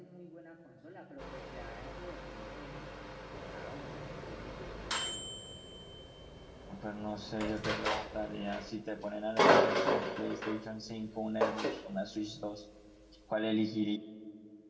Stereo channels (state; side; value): identical; both; correlation 1.00